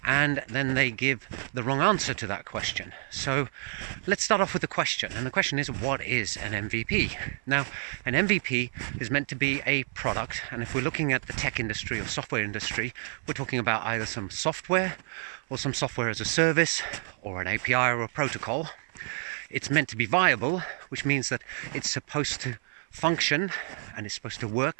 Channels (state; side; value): silent; left; 59 dB below the other